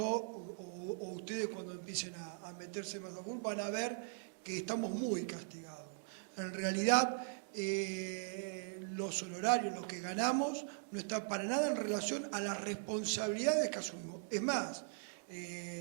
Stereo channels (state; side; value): silent; left; digital silence